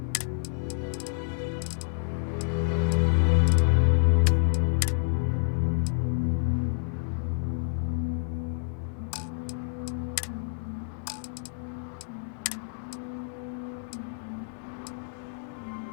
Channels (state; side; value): silent; right; digital silence